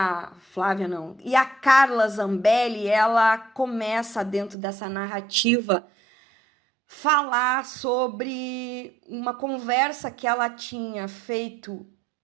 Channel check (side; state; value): left; drops out; at 4.5 s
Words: a Carla Zambelli, ela começa dentro dessa narrativa falar sobre uma conversa que ela tinha feito